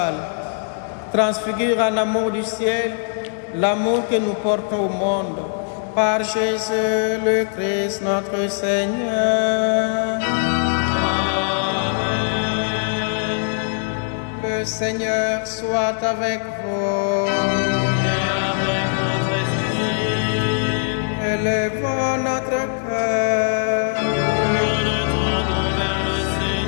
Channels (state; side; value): silent; right; 65 dB below the other